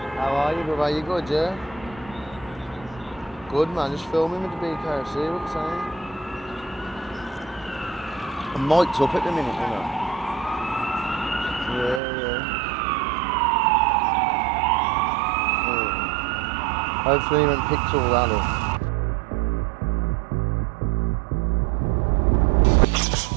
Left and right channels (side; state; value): left; drops out; at 12.0 s